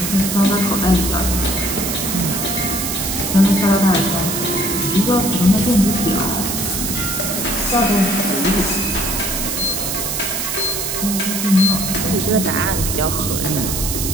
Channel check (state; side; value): noise; right; hiss, 2 dB below the sound